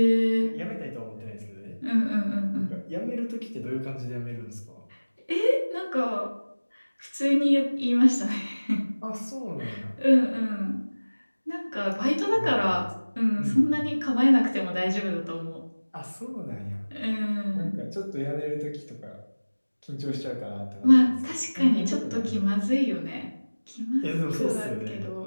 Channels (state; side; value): inverted; both; correlation -1.00